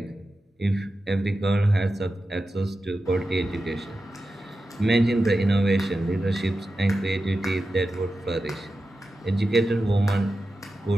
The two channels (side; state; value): both; normal; correlation 0.92